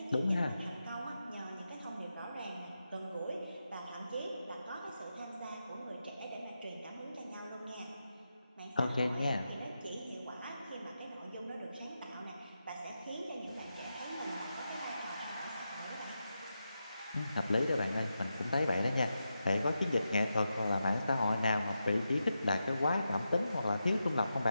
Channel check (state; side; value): inverted; both; correlation -0.88